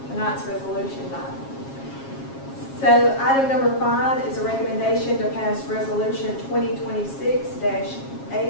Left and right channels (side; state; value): right; late; 7.4 ms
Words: Tonight's resolution died. So item number 5 is a recommendation to pass resolution